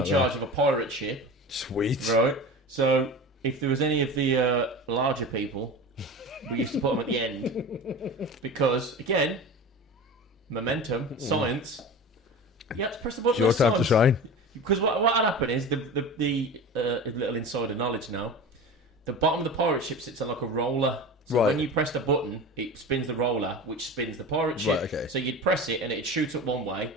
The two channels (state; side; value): normal; both; correlation 0.32